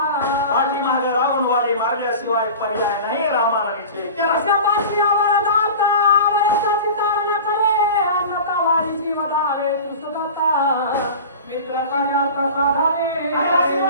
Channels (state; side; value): inverted; both; correlation -0.35